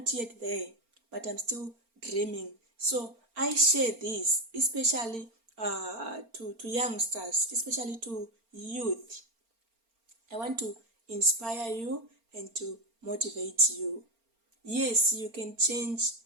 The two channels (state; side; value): late; left; 4.4 ms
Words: yet there, but I'm still dreaming. So I share this, especially to youngsters, especially to youth. I want to inspire you and to motivate you. Yes, you can change